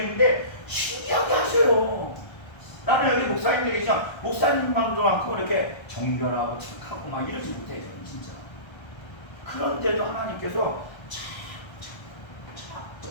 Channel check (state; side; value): late; right; 1.3 ms